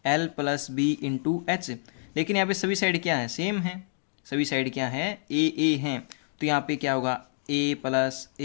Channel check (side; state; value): right; silent; digital silence